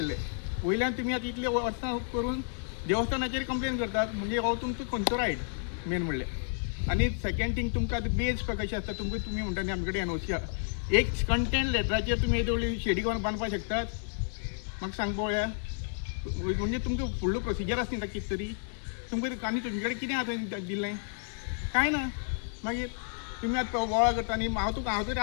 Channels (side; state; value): right; silent; digital silence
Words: वयल्यान तुमी आतां इतले वर्सां करून देवस्थानाचेर कंप्लेन करतात, म्हणजे हो तुमचो खंयचो रायट मेन म्हणल्यार. आनी सेकेंड थिंग तुमकां आतां बेज कशें आसता, तुमी म्हणटा न्ही आमचे कडेन एनओसी आहा, एक कंटेंट लेटराचेर तुमी येदोळी शेडी करून बांदपाक शकतात. म्हाका सांग पळोवया, म्हणजे तुमकां फुडलो प्रोसिजर आसा न्ही कितें तरी तुमकां आनी तुमचे कडेन कितें आतां दिल्लें कांय ना. मागीर तुमी आतां वळा करता न्ही. हांव तरी